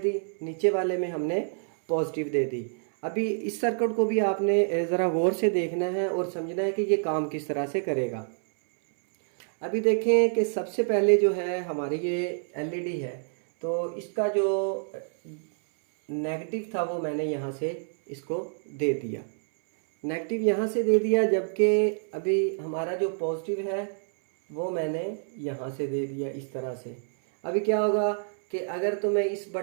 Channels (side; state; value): left; silent; 60 dB below the other